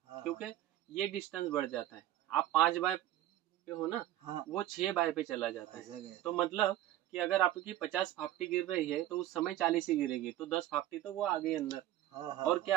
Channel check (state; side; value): quieter; left; 13.7 dB